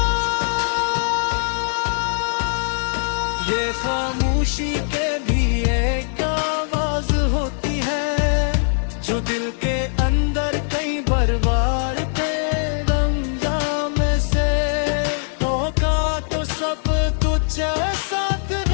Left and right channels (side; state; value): right; silent; digital silence